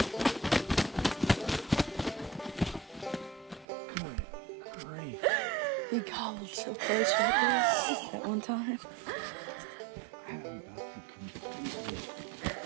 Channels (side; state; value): left; drops out; at 3.7 s